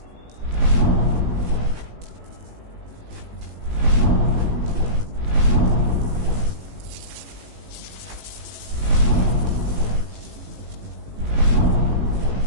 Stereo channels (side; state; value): left; late; 18 ms